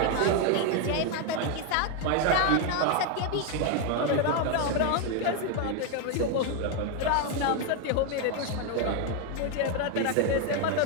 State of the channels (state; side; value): different; both; correlation 0.01